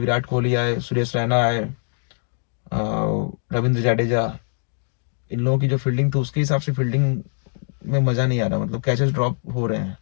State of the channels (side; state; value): right; silent; digital silence